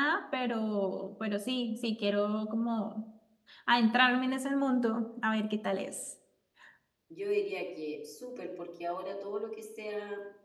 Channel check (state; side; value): identical; both; correlation 1.00